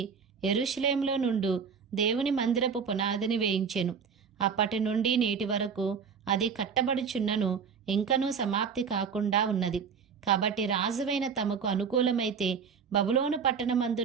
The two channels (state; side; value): quieter; left; 6.3 dB